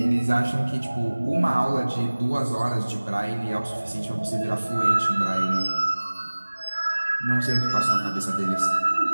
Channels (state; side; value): inverted; both; correlation -1.00